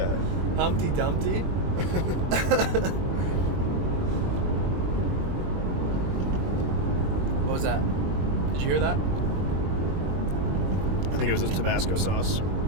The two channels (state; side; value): late; left; 21 ms